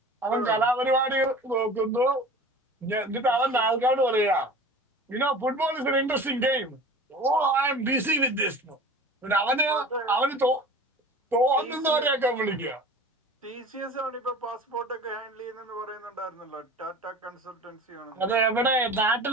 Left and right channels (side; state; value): both; normal; correlation 0.39